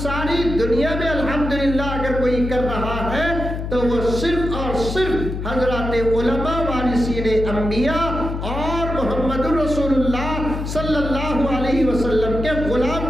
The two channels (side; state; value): left; noise; hum, 5 dB below the sound